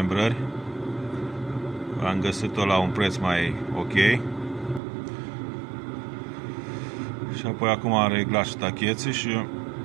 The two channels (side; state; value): left; drops out; at 4.8 s